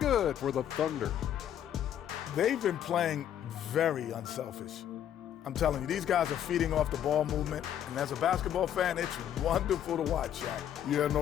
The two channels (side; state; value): right; quieter; 10.3 dB